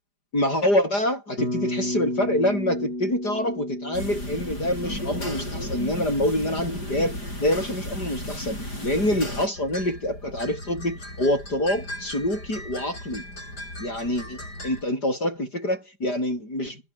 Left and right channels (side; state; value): right; late; 5.0 ms